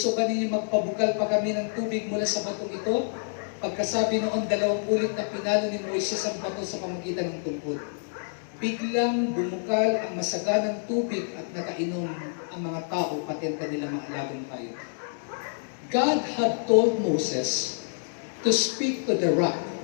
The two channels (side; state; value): right; silent; digital silence